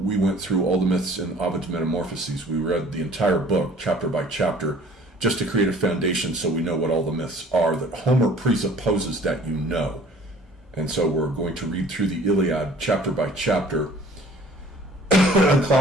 went through all the myths in Ovid's Metamorphoses. We read the entire book, chapter by chapter, just to create a foundation so we know what all the myths are that Homer presupposes that you know. And so we're going to read through the Iliad chapter by chapter.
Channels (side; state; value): both; normal; correlation 0.52